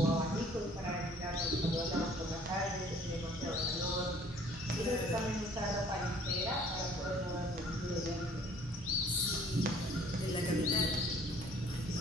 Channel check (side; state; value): both; normal; correlation 0.55